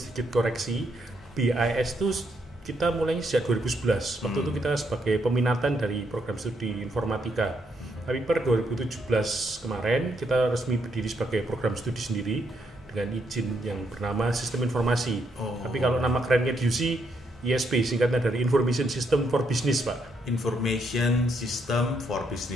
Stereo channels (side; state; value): both; normal; correlation 0.76